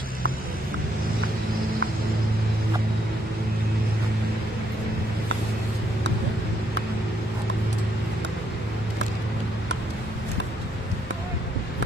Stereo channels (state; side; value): normal; both; correlation 0.73